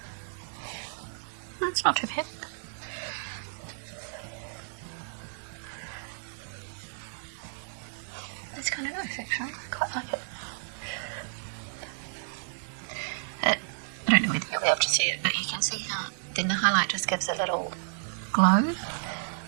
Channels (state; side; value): silent; left; digital silence